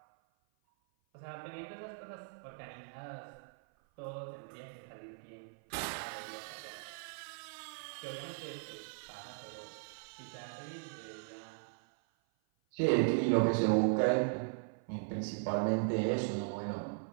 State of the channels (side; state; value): left; silent; 52 dB below the other